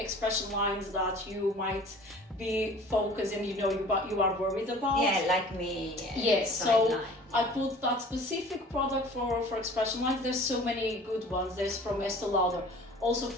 lines that you might be focused and you are worried about. Yeah, like me. Yes, so line. I put that specific product for expression lines. There's so many good ones. There's from Estee Lauder, also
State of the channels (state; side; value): normal; both; correlation 0.46